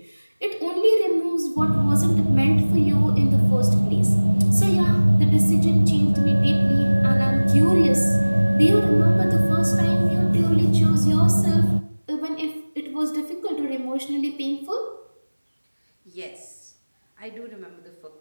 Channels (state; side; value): inverted; both; correlation -1.00